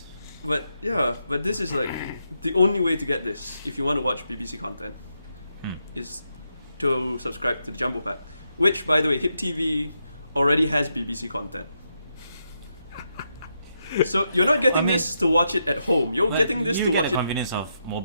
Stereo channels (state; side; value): inverted; both; correlation -0.82